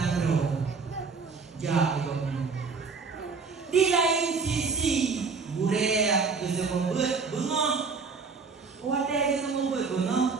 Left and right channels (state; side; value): quieter; left; 4.9 dB